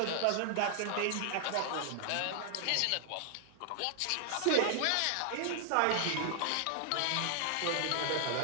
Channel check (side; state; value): both; different; correlation 0.00